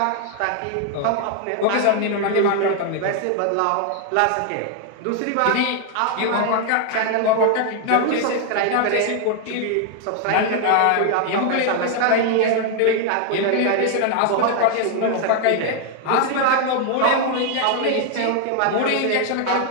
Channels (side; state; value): both; different; correlation 0.00